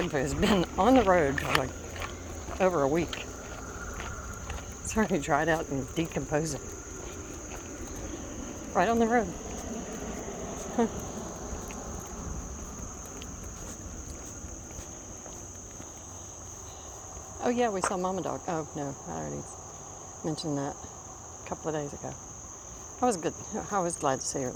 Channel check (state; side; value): identical; both; correlation 1.00